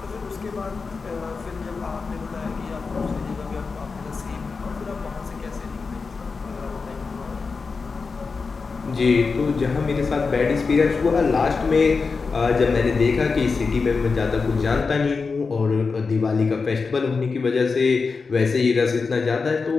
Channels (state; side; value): quieter; right; 4.6 dB